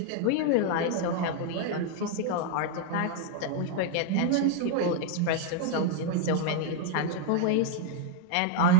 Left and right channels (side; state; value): both; different; correlation -0.01